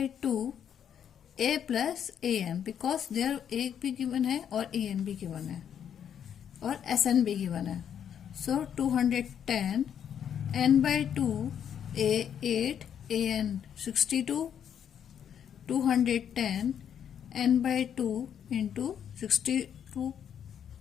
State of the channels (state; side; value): quieter; right; 8.8 dB